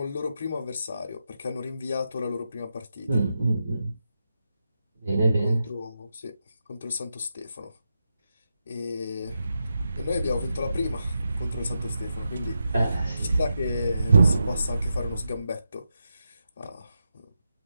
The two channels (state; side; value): inverted; both; correlation -0.86